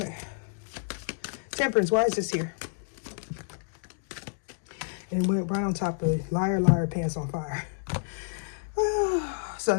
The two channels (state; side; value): silent; right; 59 dB below the other